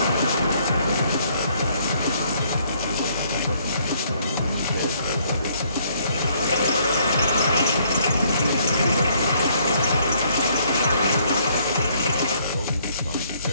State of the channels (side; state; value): both; inverted; correlation -0.65